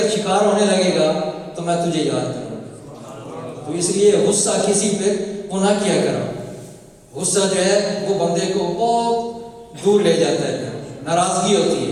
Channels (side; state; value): both; identical; correlation 1.00